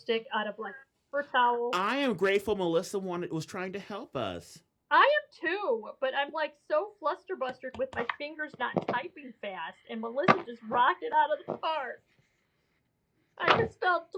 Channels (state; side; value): identical; both; correlation 1.00